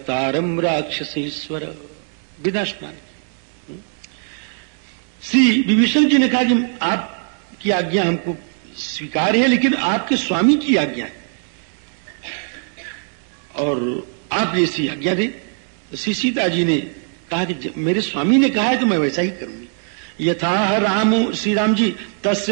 राक्षसेश्वर। बिना स्नान। श्री विभीषण जी ने कहा कि आपकी आज्ञा हमको स्वीकार है, लेकिन आपके स्वामी की आज्ञा है और आप ऐसी आज्ञा दें। तो श्री सीता जी ने कहा कि मेरे स्वामी ने कहा है तो मैं वैसा ही करूंगी। यथा राम श्री राम जी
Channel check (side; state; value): left; silent; 57 dB below the other